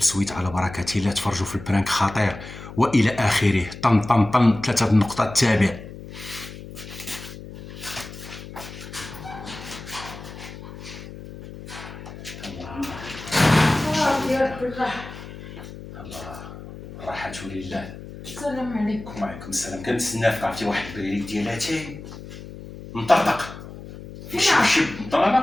على بركة الله، تفرجوا في البرانك خطير والى اخره. طن طن طن 3 النقطة تابع. الله راحة لله. السلام عليكم. وعليكم السلام. كنتسناك، عرفتي واحد البريد ديال اتاي مطرطق يشبشب. انا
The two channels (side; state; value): left; noise; hum, 13 dB below the sound